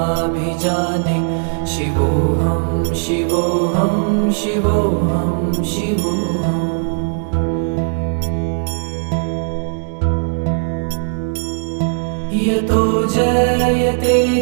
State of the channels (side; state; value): left; silent; 65 dB below the other